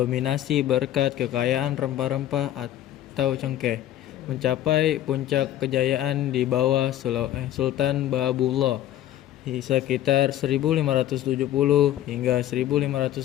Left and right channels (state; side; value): quieter; right; 12.6 dB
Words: berkat kekayaan rempah-rempah atau cengkeh, mencapai puncak kejayaan di bawah Sultan Bahabullah sekitar 1570 hingga